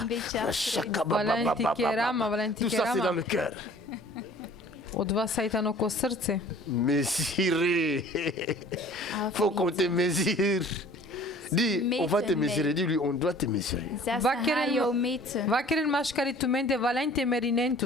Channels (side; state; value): right; noise; rumble, 26 dB below the sound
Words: des chats. Valenti kerama, valenti Tout ça, c'est dans kerama. le cœur. Od vas saitano ko srce. Mesurer. Faut qu'on te mesure. Dis, on va te mesurer. Dis-lui, on doit te mesurer. Zes Wat ga keren- jou meten. Vakerin mashkari tumende valente merinen